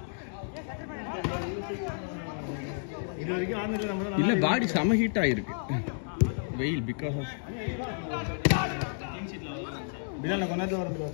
இது வரைக்கும் ஆனதுல நம்ம இல்ல பாடி செம ஹீட் ஆயிருக்கு வெயில் பிகாஸ் ஆஃப் பிலால கொண்டாந்து வரது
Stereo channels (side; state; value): right; silent; digital silence